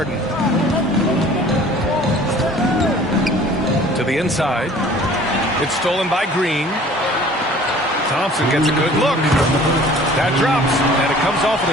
To the inside. It's stolen by Green. Thompson gets a good look. That drops, and it comes off an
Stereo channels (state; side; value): normal; both; correlation 0.49